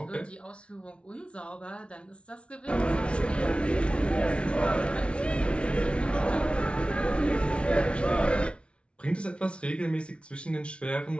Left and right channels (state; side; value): late; right; 0.059 ms